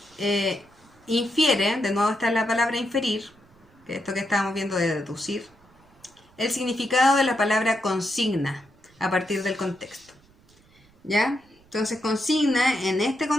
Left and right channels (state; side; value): noise; right; rumble, 30 dB below the sound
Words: Infiere, de nuevo está la palabra inferir, que es esto que estábamos viendo de deducir, el significado de la palabra consigna a partir del contexto. ¿Ya? Entonces consigna en este